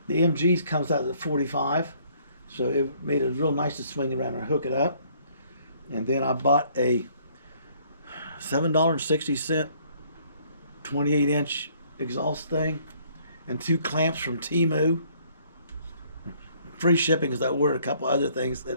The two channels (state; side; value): inverted; both; correlation -0.62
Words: The MGs comes out at 45, so it made it real nice to swing around and hook it up. And then I bought a $7.60 28-inch exhaust thing and two clamps from Temu. Free shipping because I ordered a couple other things that